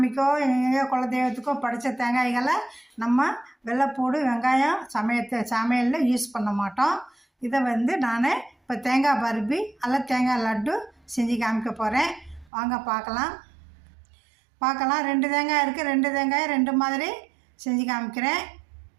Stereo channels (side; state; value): left; drops out; at 12.5 s